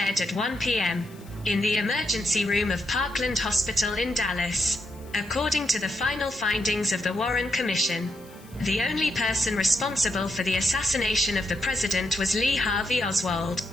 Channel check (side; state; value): left; noise; hiss, 25 dB below the sound